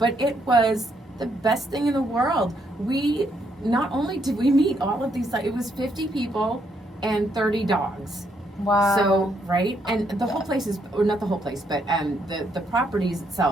it was the best thing in the world. We not only did we meet all of these, it was 50 people and 30 dogs. Wow. So, right? And the whole place is, or not the whole place, but the properties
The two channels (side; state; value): both; normal; correlation 0.74